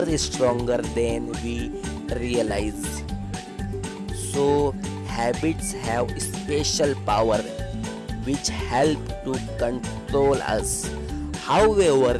stronger than we realize. So, habits have special power which help to control us. However,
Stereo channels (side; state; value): both; identical; correlation 1.00